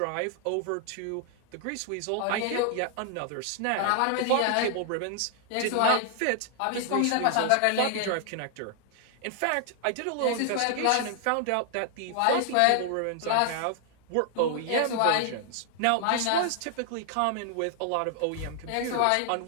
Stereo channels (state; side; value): different; both; correlation 0.00